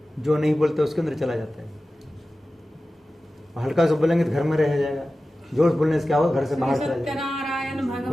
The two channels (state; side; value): normal; both; correlation 0.95